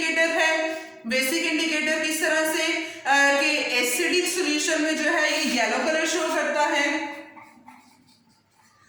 है। बेसिक इंडिकेटर किस तरह से कि एसिडिक सॉल्यूशन में जो है ये येलो कलर शो करता है,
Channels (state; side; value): identical; both; correlation 1.00